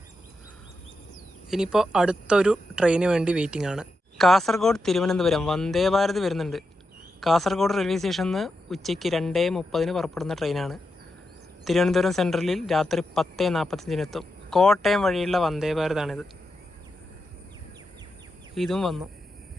ഇനിയിപ്പോൾ അടുത്തൊരു ട്രെയിന് വേണ്ടി വെയിറ്റിംഗ് ആണ്. കാസർഗോഡ് തിരുവനന്തപുരം വന്ദേ ഭാരത് വരുന്നുണ്ട്. കാസർഗോഡ് റെയിൽവേ സ്റ്റേഷനിൽ നിന്ന് ഉച്ചയ്ക്ക് 2:30 പുറപ്പെടുന്ന ട്രെയിനാണ്. തിരുവനന്തപുരം സെൻട്രലിൽ രാത്രി 10:45 കോട്ടയം വഴിയുള്ള വന്ദേ ഭാരതാണിത്. ഇതും വന്നു.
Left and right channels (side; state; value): both; normal; correlation 0.87